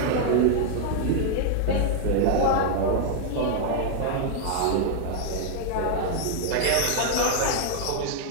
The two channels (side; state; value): both; different; correlation 0.00